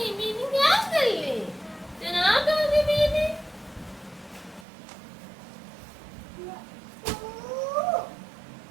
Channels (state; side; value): drops out; left; at 4.7 s